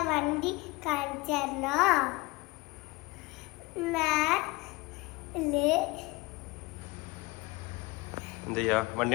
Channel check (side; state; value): right; quieter; 23.6 dB